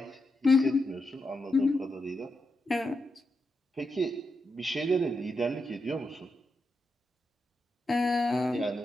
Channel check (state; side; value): normal; both; correlation 0.86